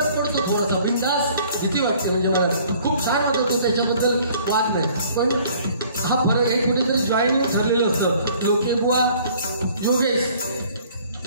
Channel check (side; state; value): both; inverted; correlation -0.55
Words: पडतो, थोडासा बिंदास भीती वाटते. म्हणजे मला खूप छान वाटतो, त्याच्याबद्दल वाद नाही. पण हा फरक हे कुठेतरी जॉईनिंग ठरलेलं असतं. लोके बुवा योगेश